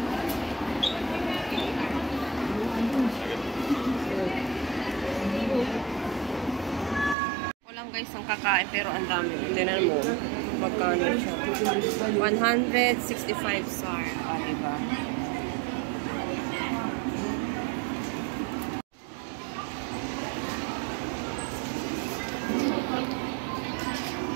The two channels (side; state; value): left; drops out; at 7.2 s